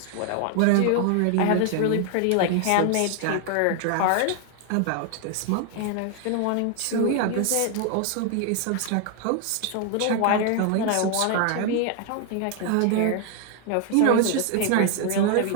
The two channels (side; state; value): both; different; correlation 0.01